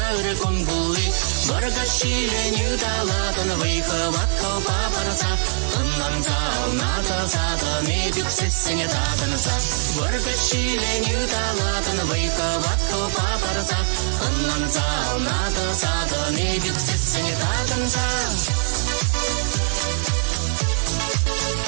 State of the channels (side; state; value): left; silent; 56 dB below the other